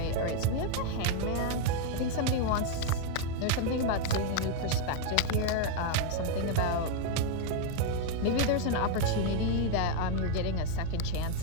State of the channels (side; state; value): both; different; correlation 0.00